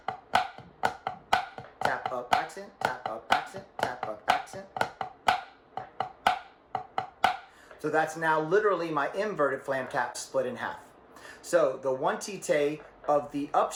tap up accent, tap up accent, tap up accent. So that's now literally my inverted flam tap split in half. So the one tite of the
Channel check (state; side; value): identical; both; correlation 1.00